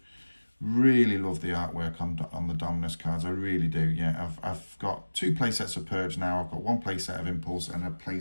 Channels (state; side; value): inverted; both; correlation -1.00